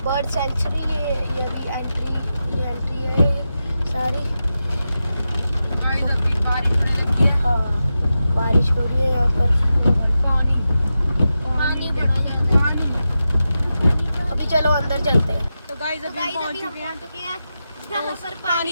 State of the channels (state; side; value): inverted; both; correlation -0.91